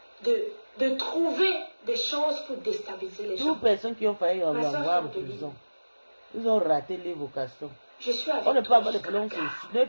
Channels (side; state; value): both; inverted; correlation -1.00